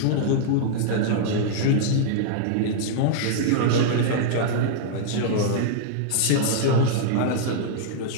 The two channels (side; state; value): both; different; correlation -0.02